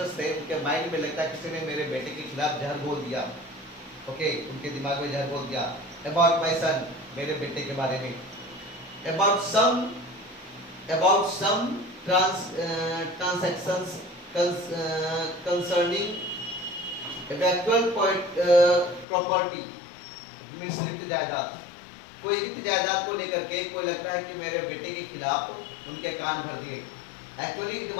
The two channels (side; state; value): right; drops out; at 19.1 s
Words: थे उनके माइंड में लगता है किसी ने मेरे बेटे के खिलाफ जहर बोल दिया। ओके, उनके दिमाग में जहर बोल दिया। अबाउट माय सन, मेरे बेटे के बारे में। About some transactions concerning actual property, means रिक्त जायदाद, कोई रिक्त जायदाद को लेकर के कोई लगता है कि मेरे बेटे के खिलाफ उनके कान भर दिए। Actually it